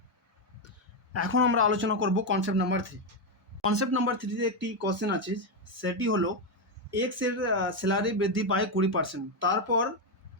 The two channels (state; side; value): normal; both; correlation 0.06